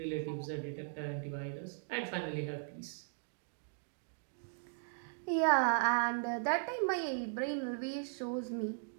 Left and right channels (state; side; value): silent; left; digital silence